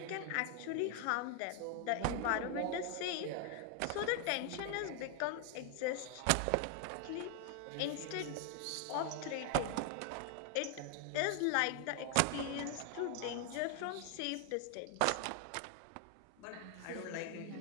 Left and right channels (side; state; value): both; different; correlation 0.00